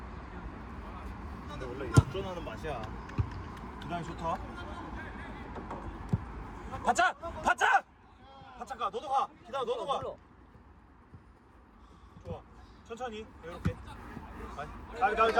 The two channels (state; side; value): identical; both; correlation 1.00